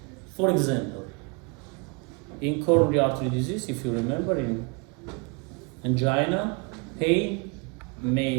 For example, in coronary artery disease, if you remember, in angina, pain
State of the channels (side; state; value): left; quieter; 32.8 dB